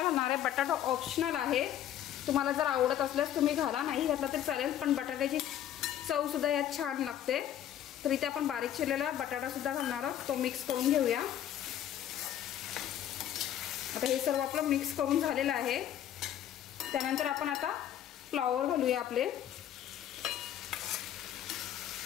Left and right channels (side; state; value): right; quieter; 11.0 dB